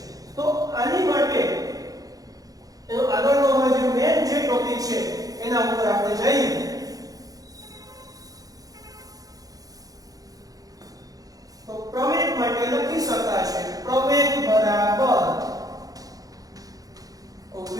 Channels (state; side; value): late; left; 0.17 ms